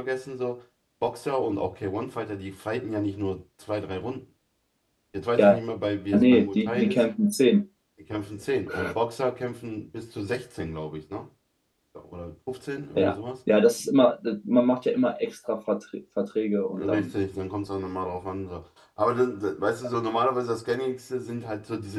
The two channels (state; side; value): identical; both; correlation 1.00